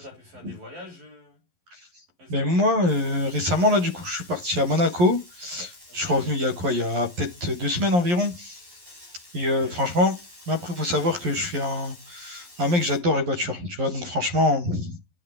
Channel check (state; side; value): late; left; 11 ms